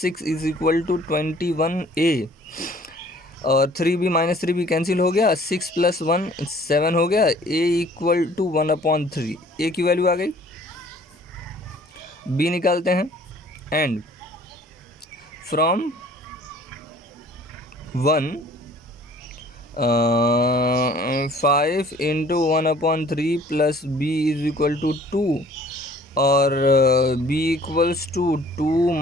6 is equal to 21a और 3b माइनस 3b कैंसिल हो गया. 6 प्लस 1 7 हो गया. a equal to 1/3. a की वैल्यू आ गई. b निकालते हैं and from 1 5 into 1/3 plus b is equal to 2 और b इक्वल्स टू 2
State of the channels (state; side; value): normal; both; correlation 0.54